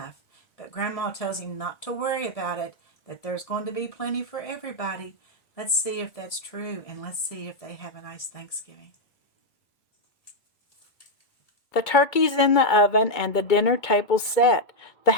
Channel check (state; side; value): late; right; 1.8 ms